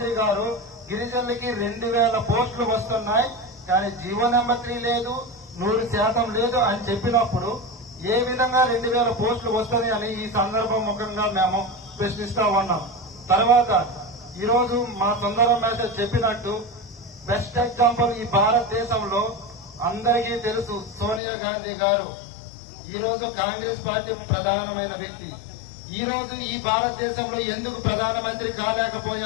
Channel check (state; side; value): drops out; right; at 21.2 s